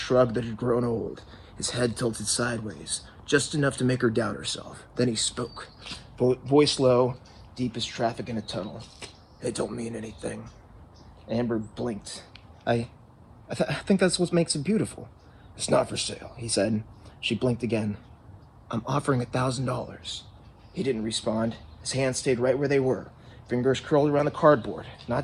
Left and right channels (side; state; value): both; identical; correlation 1.00